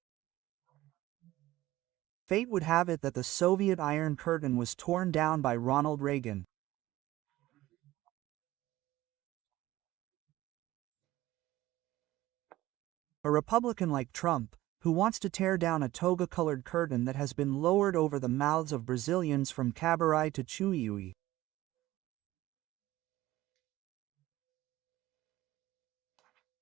Fate would have it that the Soviet Iron Curtain was torn down by Ronald Reagan. A Republican like Trump, who wants to tear down a toga-colored curtain that has been lowered over the mouths of Brazilians from Cabaré to Chuiui.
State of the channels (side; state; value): left; quieter; 16.5 dB